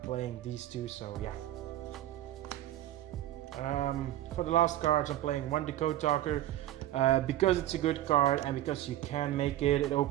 playing these two, so yeah. For the last cards, I'm playing one Decode Talker because it's a good card and because you can make it. It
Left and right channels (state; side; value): quieter; left; 13.9 dB